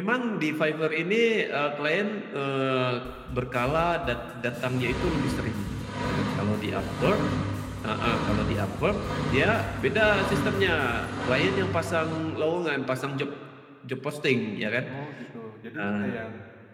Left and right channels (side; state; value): both; identical; correlation 1.00